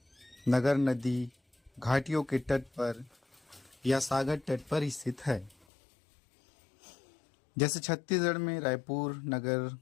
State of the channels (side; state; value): right; drops out; at 5.6 s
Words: नगर नदी घाटियों के तट पर या सागर तट पर स्थित है। जैसे छत्तीसगढ़ में रायपुर नगर